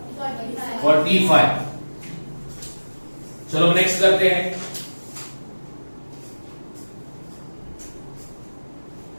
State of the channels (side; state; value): both; inverted; correlation -1.00